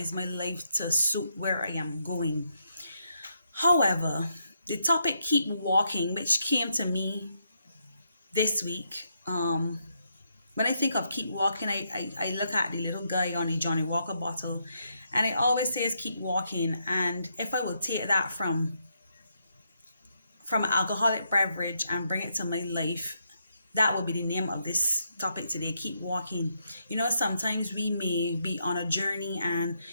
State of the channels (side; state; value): both; inverted; correlation -0.78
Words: my life to suit where I am going. However, the topic keep walking, which came to me this week. When I think of keep walking, I look at the little guy on the Johnny Walker bottle, and it always says keep walking. And if I will take that from an alcoholic beverage and bring it to my life, that would be the name of this topic today, keep walking. You know, sometimes we may be on a journey and